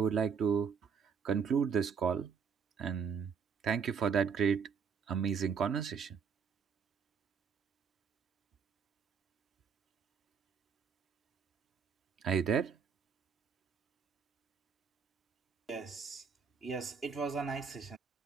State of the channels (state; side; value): quieter; left; 6.5 dB